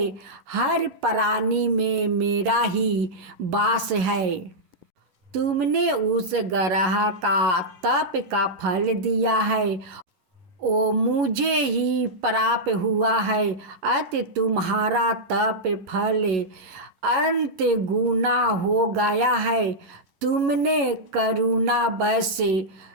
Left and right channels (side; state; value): left; late; 11 ms